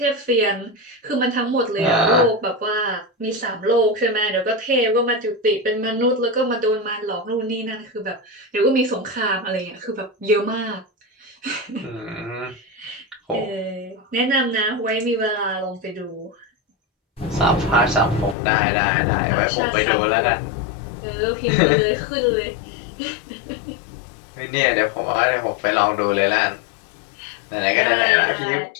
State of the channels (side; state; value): right; drops out; at 18.4 s